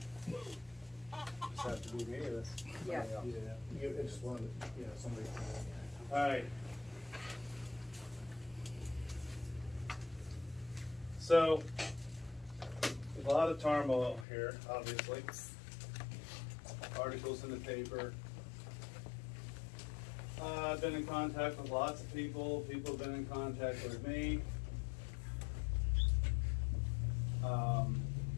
now. Just have to be me or this? Yeah. You, it's one, somebody. Alright. So, there's a lot of turmoil here, obviously. Articles in the paper. I've been in contact with lots of people. People have been in contact with me.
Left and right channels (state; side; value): drops out; right; at 14.2 s